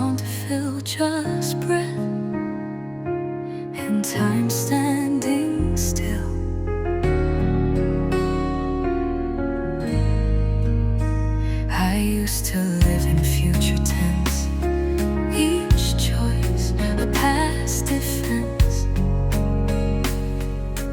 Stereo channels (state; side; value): identical; both; correlation 1.00